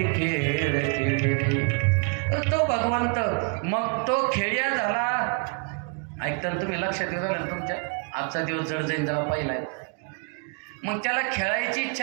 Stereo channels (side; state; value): left; quieter; 36.0 dB